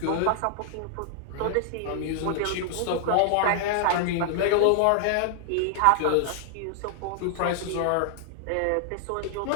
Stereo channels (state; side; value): different; both; correlation 0.00